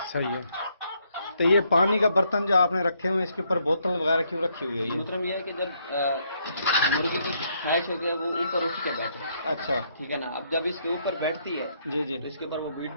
صحیح ہے۔ تو یہ پانی کا برتن جو آپ نے رکھے ہوئے ہیں، اس کے اوپر بوتل وغیرہ کیوں رکھی ہوئی ہے یہ؟ محترم یہ ہے کہ جب مرغی کی خواہش ہوتی ہے وہ اوپر اٹھ کے بیٹھے، اچھا، ٹھیک ہے نا، اب جب اس کے اوپر بیٹھتی ہے جی، جی، تو اس کے اوپر وہ بیٹ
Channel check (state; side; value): inverted; both; correlation -0.72